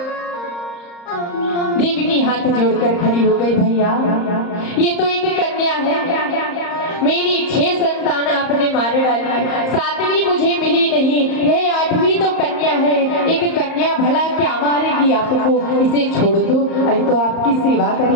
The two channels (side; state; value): right; late; 34 ms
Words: देवी हाथ जोड़कर खड़ी हो गई, भैया ये तो एक कन्या है, मेरी 6 संतान आपने मार डाली, 7वीं मुझे मिली नहीं, यह 8वीं तो कन्या है, एक कन्या भला क्या मारेगी आपको, इसे छोड़ दो, अरे तो आपकी सेवा